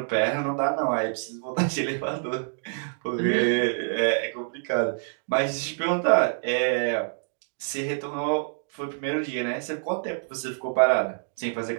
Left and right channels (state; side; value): silent; left; digital silence